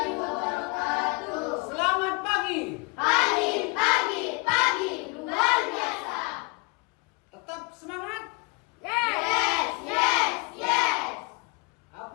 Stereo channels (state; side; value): quieter; right; 28.4 dB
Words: wabarakatuh. Selamat pagi. Pagi, luar biasa. Tetap semangat. Yes.